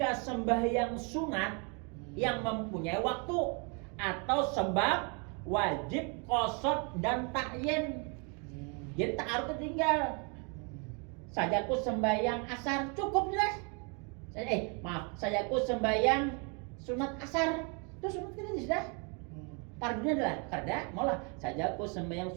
sembahyang sunat yang mempunyai waktu atau sebab wajib qasad dan ta'yin. Jadi ta'arud tinggal. Sajaku sembahyang asar cukup jelas. Sajaku sembahyang sunat asar. Itu sunat kita sudah. Fardunya adalah kada malah sajaku sembahyang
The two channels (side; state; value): left; quieter; 34.7 dB